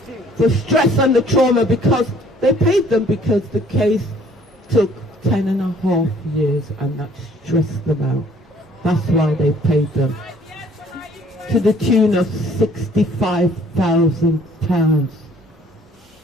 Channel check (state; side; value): normal; both; correlation 0.58